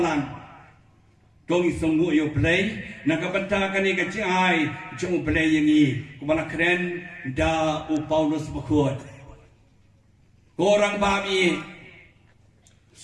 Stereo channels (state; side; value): identical; both; correlation 1.00